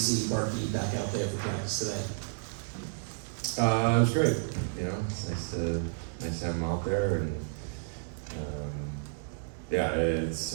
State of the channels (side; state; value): left; silent; digital silence